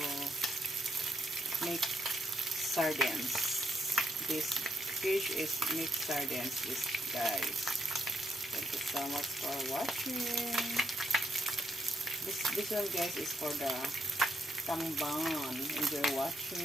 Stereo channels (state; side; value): normal; both; correlation 0.78